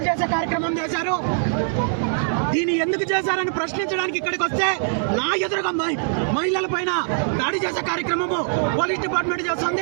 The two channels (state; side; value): silent; left; digital silence